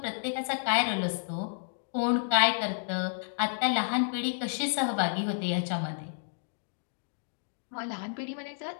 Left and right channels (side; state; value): right; silent; digital silence